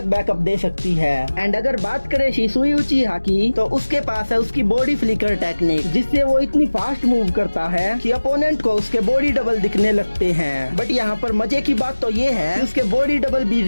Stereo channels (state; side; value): inverted; both; correlation -1.00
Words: बैकअप दे सकती है। एंड अगर बात करें शिसुई उचिहा की, तो उसके पास है उसकी बॉडी फ्लिकर टेक्निक, जिससे वो इतनी फास्ट मूव करता है कि अपोनेंट को उसके बॉडी डबल दिखने लगते हैं। बट यहाँ पर मजे की बात तो ये है कि उसके बॉडी डबल भी